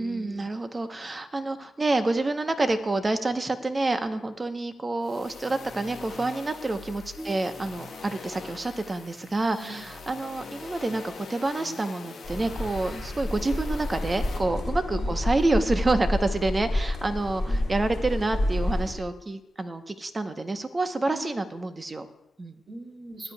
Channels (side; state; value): both; normal; correlation 0.94